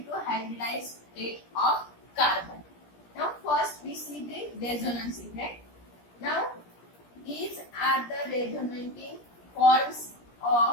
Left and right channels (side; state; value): right; late; 17 ms